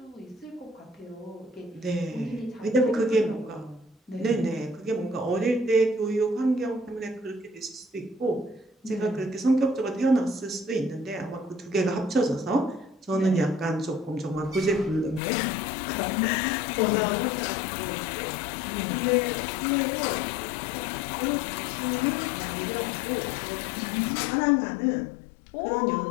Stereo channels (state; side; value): drops out; right; at 15.2 s